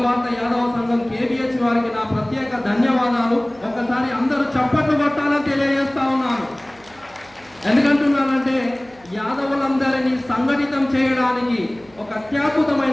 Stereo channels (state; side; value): noise; right; hum, 28 dB below the sound